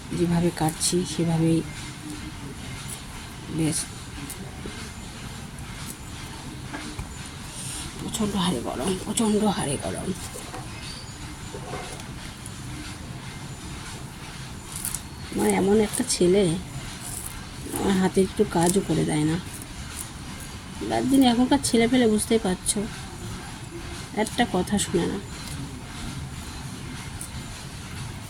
যেভাবে কাটছি সেভাবেই বেশ প্রচণ্ড হারে গরম, প্রচণ্ড হারে গরম। আমার এমন একটা ছেলে, আমার হাতে একটু কাজও করে দেয় না। রাত দিন এখনকার ছেলে পেলে বুঝতেই পারছো, একটা কথা শুনে না।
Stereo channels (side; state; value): both; identical; correlation 1.00